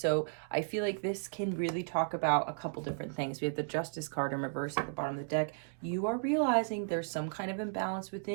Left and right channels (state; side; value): silent; left; digital silence